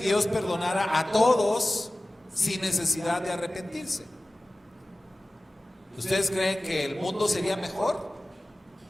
perdonara a todos sin necesidad de arrepentirse? ¿Ustedes creen que el mundo sería mejor?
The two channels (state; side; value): normal; both; correlation 0.97